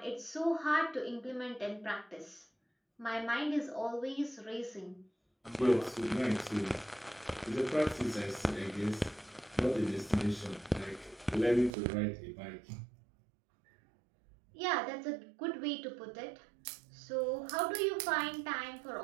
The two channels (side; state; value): left; drops out; at 11.7 s